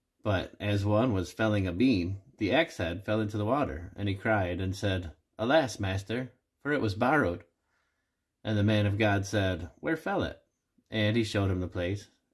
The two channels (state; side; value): identical; both; correlation 1.00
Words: But as one was felling a beam, the axe head fell into the water, and he cried and said, Alas, master, for it was borrowed. And the man of God said, Where fell it? And he showed him the place.